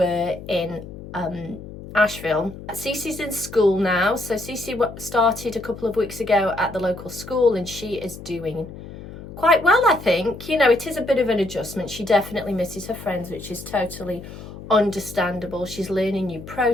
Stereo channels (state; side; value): noise; left; hum, 13 dB below the sound